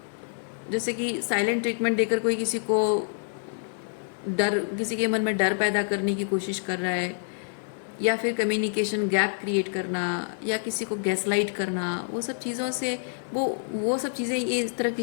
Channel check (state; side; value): silent; right; digital silence